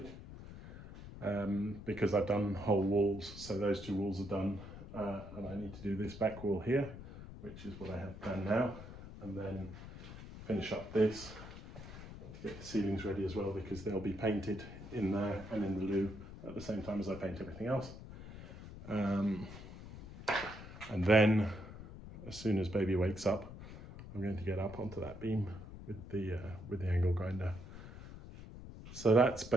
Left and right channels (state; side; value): noise; left; rumble, 13 dB below the sound